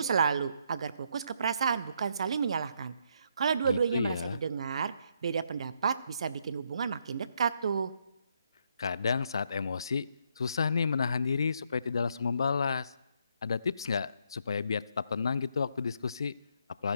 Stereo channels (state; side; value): inverted; both; correlation -0.74